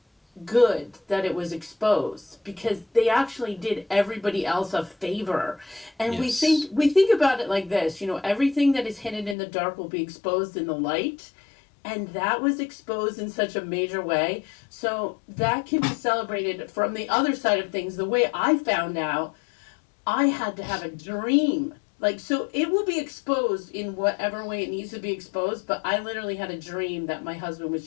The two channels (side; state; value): right; drops out; at 9.3 s